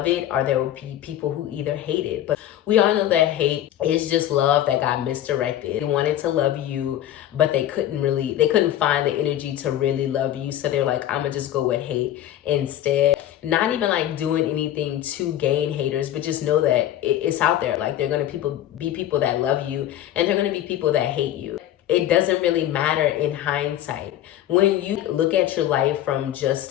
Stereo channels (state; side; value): quieter; right; 12.3 dB